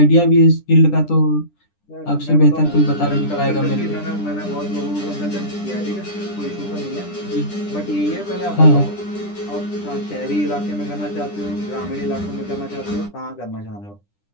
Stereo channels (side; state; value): right; late; 10 ms